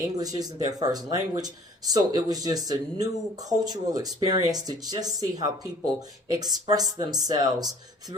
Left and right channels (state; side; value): normal; both; correlation 0.52